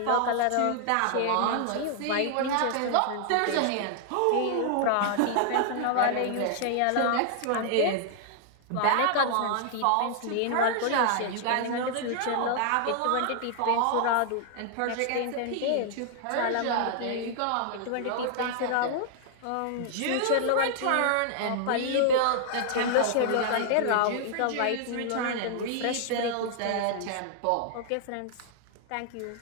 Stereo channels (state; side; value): different; both; correlation -0.01